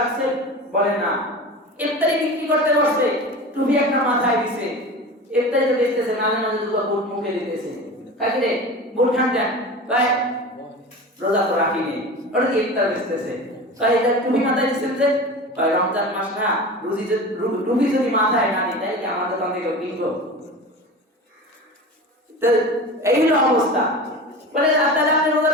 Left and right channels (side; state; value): both; normal; correlation 0.32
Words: বলে না। ইফতারি বিক্রি করতে বসছে, টুপি একটা মাথায় দিছে, ইফতারি তো বেচতেছে, নালে নালে দুটো বুট মুখে দিতেছে। কাকি রে বুট খান দেন ভাই, রোজা তো রাখিনি, ওটা কি ইফতার বেচতেছে। তাই এটা টুপি মাথায় দিচ্ছেন যে ভাই রমজান মাস না, টুপি যদি মাথায় না নিই তাই কি আমার দোকান থেকে কিনবো? তো এই হলো অবস্থা। বলে তাহলে আপনি রোজা